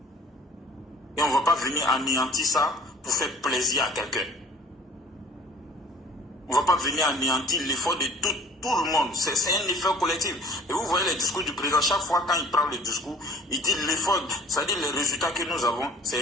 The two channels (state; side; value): normal; both; correlation 0.48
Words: Et on ne va pas venir anéantir ça pour faire plaisir à quelqu'un. On ne va pas venir anéantir l'effort de tout le monde. C'est un effort collectif. Et vous voyez les discours du président, chaque fois quand il prend le discours, il dit l'effort, c'est-à-dire les résultats que nous avons, c'est